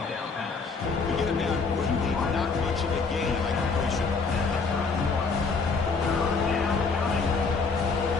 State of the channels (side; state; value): right; quieter; 4.6 dB